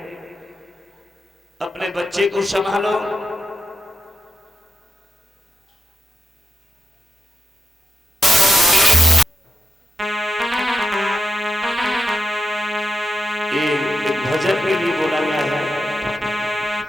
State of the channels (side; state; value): both; normal; correlation 0.84